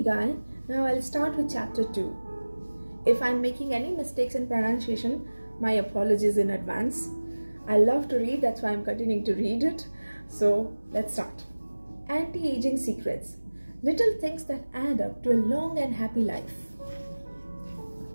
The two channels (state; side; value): inverted; both; correlation -1.00